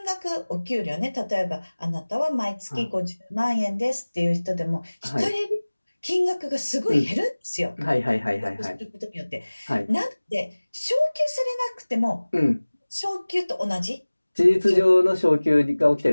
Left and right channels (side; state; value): both; inverted; correlation -1.00